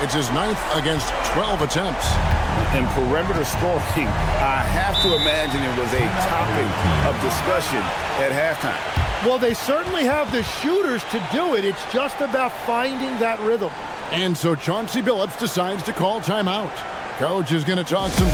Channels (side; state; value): both; identical; correlation 1.00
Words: his 9th against 12 attempts. And perimeter scoring, I have to imagine it was a topic of discussion at halftime. Well, they certainly have the shooters to do it. It's just about finding that rhythm. And so Chauncey Billups decides to call timeout. Coach is going to talk some